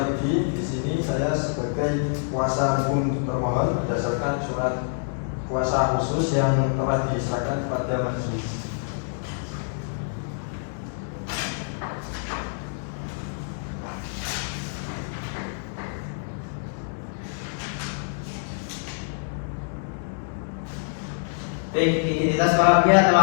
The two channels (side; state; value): right; silent; digital silence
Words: Di sini saya sebagai kuasa hukum termohon berdasarkan surat kuasa khusus yang telah diserahkan kepada majelis. Baik, identitas para pihak